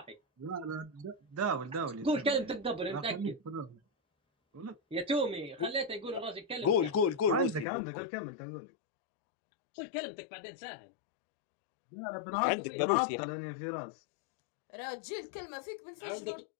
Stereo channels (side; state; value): right; drops out; at 7.7 s